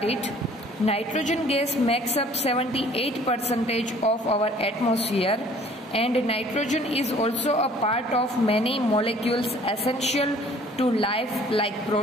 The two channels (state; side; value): normal; both; correlation 0.54